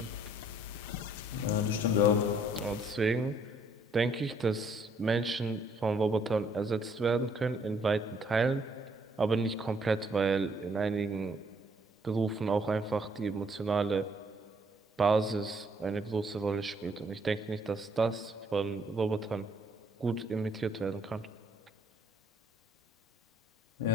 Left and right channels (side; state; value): both; normal; correlation 0.66